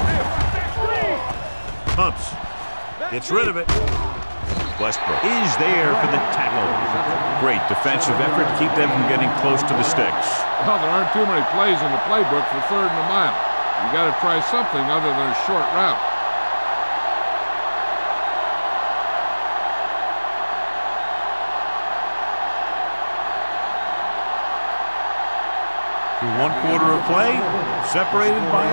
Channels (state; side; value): inverted; both; correlation -1.00